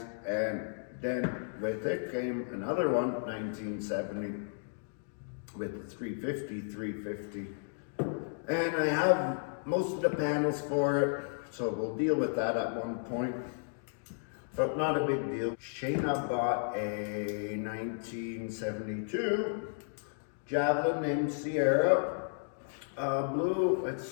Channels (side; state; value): right; silent; digital silence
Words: And then with it came another one, 1970, with the 350. And I have most of the panels for it, so we'll deal with that at one point. But not a big deal. Shayna bought a 1972 Javelin named Sierra. Blue,